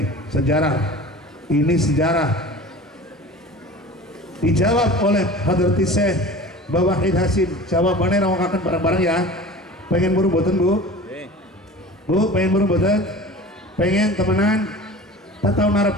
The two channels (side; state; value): both; normal; correlation 0.38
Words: sejarah ini sejarah dijawab oleh Hadrati Syekh Mbah Wahid Hasim. Jawabannya rawakan bareng-bareng ya. Pengen buru boten Bu? Pengen buru boten? Pengen temenan? Tak tahu